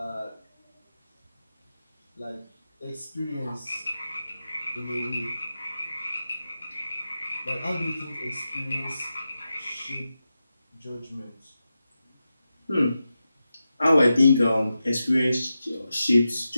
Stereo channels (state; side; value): inverted; both; correlation -0.91